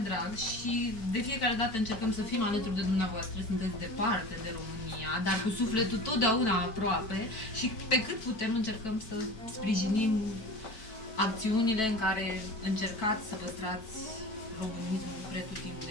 și de fiecare dată încercăm să fim alături de dumneavoastră. Sunteți departe de România, dar cu sufletul totdeauna aproape și pe cât putem încercăm să sprijinim acțiunile în care încercați să păstrați românismul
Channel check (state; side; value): late; right; 4.6 ms